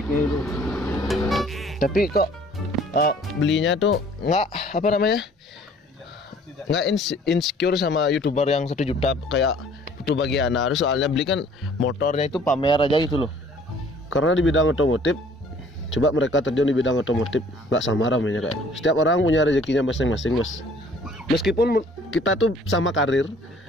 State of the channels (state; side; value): normal; both; correlation 0.55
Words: itu. Tapi kok belinya tuh nggak apa namanya, nggak insecure sama youtuber yang 1 juta kayak itu bagian harus, soalnya beli kan motornya itu pamer aja gitu loh. Karena di bidang otomotif, coba mereka terjun di bidang otomotif nggak sama ramainya kayak. Setiap orang punya rezekinya masing-masing bos. Meskipun kita tuh sama karir,